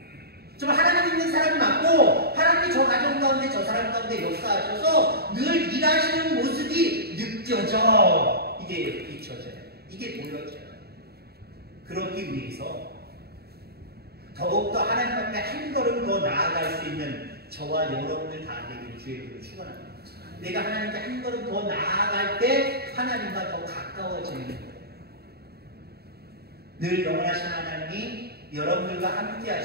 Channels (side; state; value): left; late; 0.46 ms